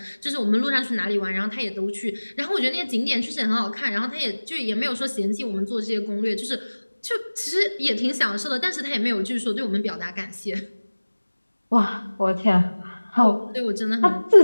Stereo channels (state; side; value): inverted; both; correlation -1.00